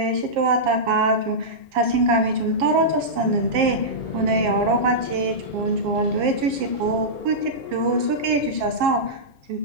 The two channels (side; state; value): left; late; 7.4 ms